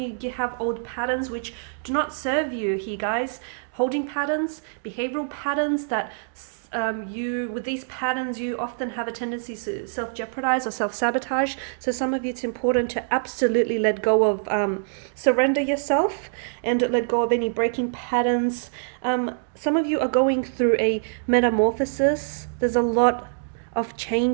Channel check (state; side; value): silent; left; digital silence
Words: have old patterns which do not serve you here, guys. Holding patterns, behavioral patterns that with these patterns you often have a tendency to self-jeopardize or self-sabotage. So some of you, it's important to absolutely let go of surrender yourself and let go of any breaking patterns. Some of you are going through a metamorphosis. There's a lot of